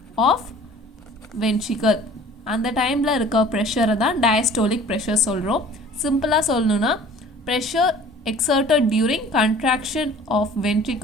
of ventricle, அந்த டைமில் இருக்க ப்ரெஷரை தான் டயஸ்டோலிக் ப்ரெஷர் சொல்கிறோம். சிம்பிளாக சொல்லணுன்னா pressure exerted during contraction of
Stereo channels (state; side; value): normal; both; correlation 0.48